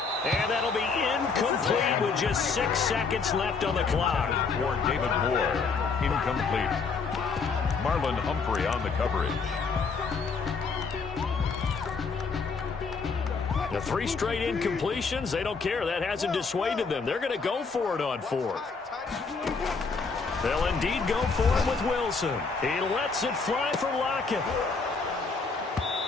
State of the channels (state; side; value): quieter; right; 4.8 dB